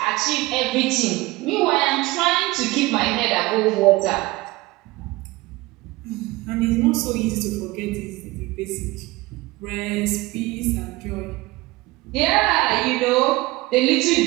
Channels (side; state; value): left; quieter; 20.6 dB